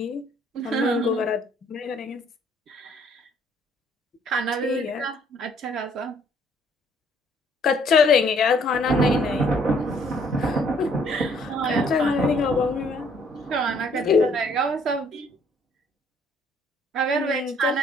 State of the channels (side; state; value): both; normal; correlation 0.63